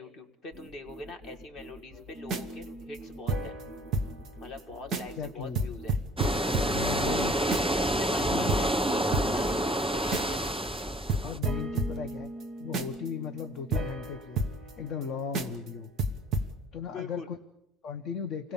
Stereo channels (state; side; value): normal; both; correlation 0.52